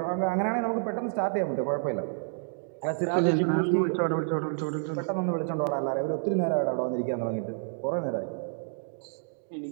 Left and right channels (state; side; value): silent; left; digital silence